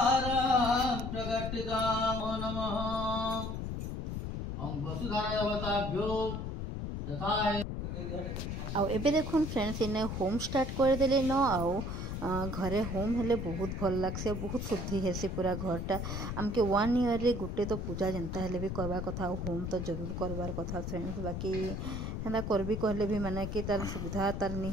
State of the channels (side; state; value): left; noise; rumble, 4 dB below the sound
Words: प्रकटितां नमः ओम वसुधाराय अवताभ्यो यथाय आउ एबे देखुन फ्रेंड्स इने होम स्टार्ट कर देले न आउ घरे होम हेले बहुत भल लागसे बहुत शुद्धि हेसी पूरा घरटा आमके 1 ईयर रे गुटे तो पूजा जनता हेले भी करबा कथा होम तो जरूर करबार कथा फ्रेंड्स बाकी हेना करबी कहले भी माने कि तार सुविधा तार नी